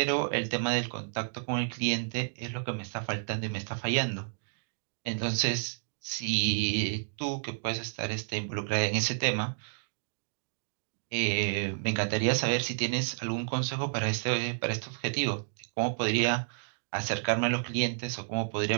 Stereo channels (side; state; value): left; silent; digital silence